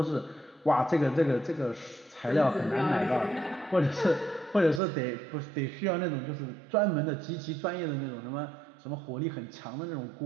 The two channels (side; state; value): left; drops out; at 4.8 s